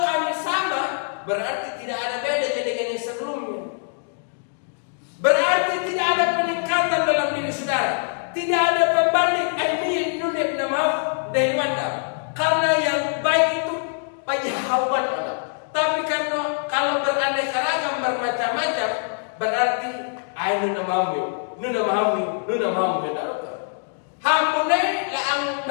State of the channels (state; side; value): silent; right; digital silence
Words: kami sama, berarti tidak ada beda dengan yang sebelumnya. Berarti tidak ada peningkatan dalam diri saudara. Tidak ada pembanding ilmiah nunib namaf dari mandam. Karena yang baik itu pajahawan Allah. Tapi karena kalau beraneka ragam bermacam-macam, berarti nuna mahamu hampune laang